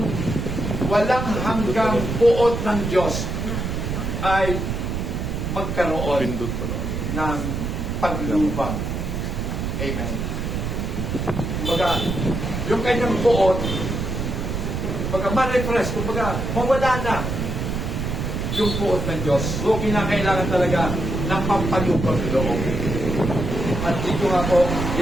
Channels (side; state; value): right; noise; rumble, 3 dB below the sound